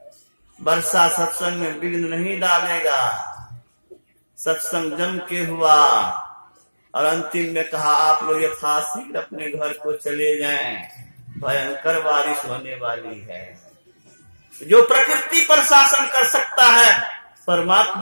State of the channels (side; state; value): both; inverted; correlation -1.00